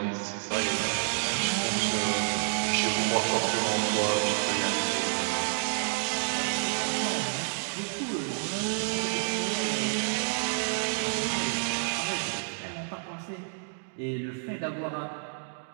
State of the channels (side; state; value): left; silent; digital silence